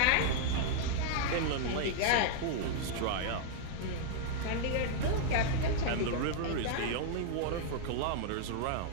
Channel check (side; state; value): both; different; correlation -0.01